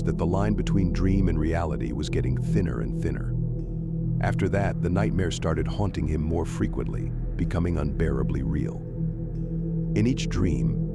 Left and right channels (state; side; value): identical; both; correlation 1.00